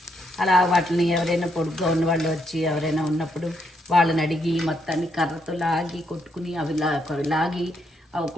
అలా వాటిని ఎవరైనా పొడుగ్గా ఉన్నవాళ్ళు వచ్చి ఎవరైనా ఉన్నప్పుడు వాళ్ళని అడిగి మొత్తాన్ని కర్రతో లాగి కొట్టుకుని అవి లాగి అవి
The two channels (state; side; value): normal; both; correlation 0.77